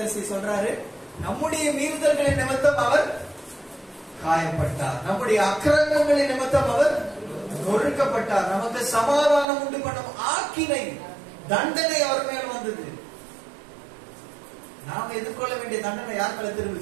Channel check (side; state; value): left; drops out; at 9.5 s